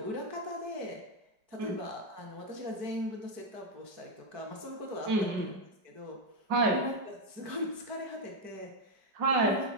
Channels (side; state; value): left; late; 4.6 ms